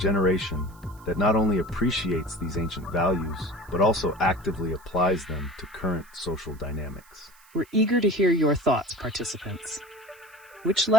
that not only appreciates these ancient values, but also actively applies them to current social dynamics. We're eager to hear your thoughts, participants. Which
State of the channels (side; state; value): right; noise; hiss, 27 dB below the sound